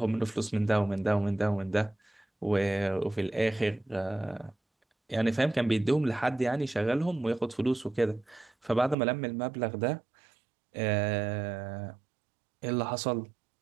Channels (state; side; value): drops out; left; at 9.0 s